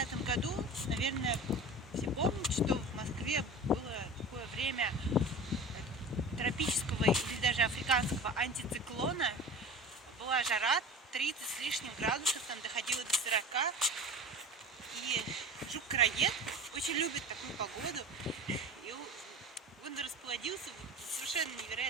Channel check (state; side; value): normal; both; correlation 0.35